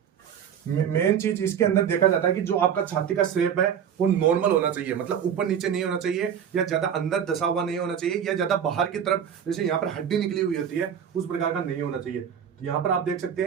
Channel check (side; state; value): left; quieter; 8.4 dB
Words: मेन चीज इसके अंदर देखा जाता है कि जो आपका छाती का शेप है वो नॉर्मल होना चाहिए, मतलब ऊपर नीचे नहीं होना चाहिए, या ज्यादा अंदर दसा हुआ नहीं होना चाहिए, या ज्यादा बाहर की तरफ जैसे यहाँ पर हड्डी निकली हुई होती है उस प्रकार का नहीं होना चाहिए। तो यहाँ पर आप देख सकते